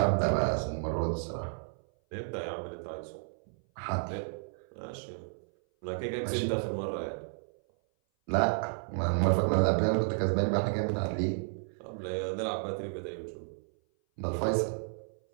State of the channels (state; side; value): silent; left; 56 dB below the other